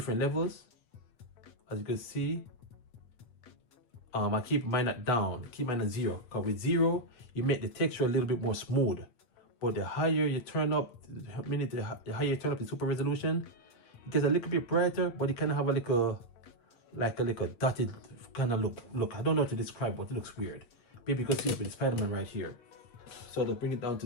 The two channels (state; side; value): late; right; 8.5 ms